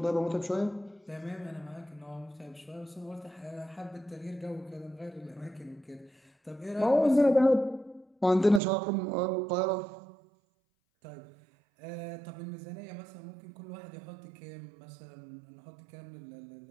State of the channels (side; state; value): left; drops out; at 8.6 s